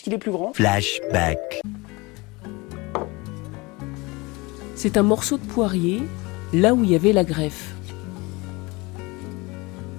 est plus grand. Flashback. C'est un morceau de poirier, là où il y avait la greffe.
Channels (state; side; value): quieter; right; 24.6 dB